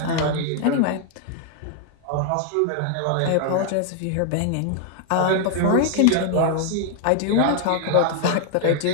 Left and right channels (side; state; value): both; different; correlation 0.00